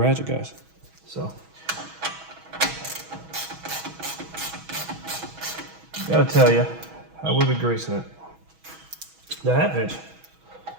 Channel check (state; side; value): late; left; 6.2 ms